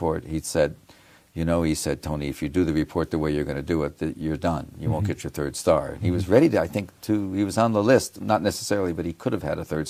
he said, he said, Tony, if you do the report the way you're going to do it, you're done. You won't get your 3rd star. And he was ready to, I think, he was on the list, not necessarily, but he could have had a 3rd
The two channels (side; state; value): both; identical; correlation 1.00